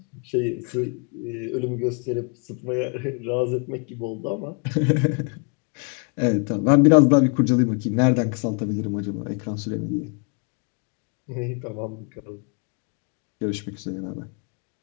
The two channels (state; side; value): quieter; right; 37.5 dB